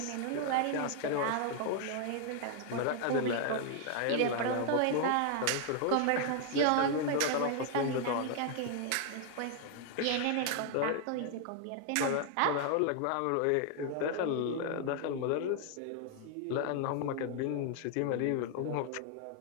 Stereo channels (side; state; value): both; different; correlation 0.00